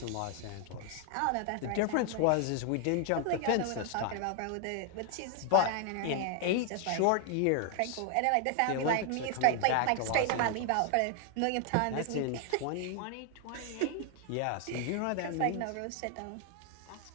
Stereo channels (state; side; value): different; both; correlation 0.00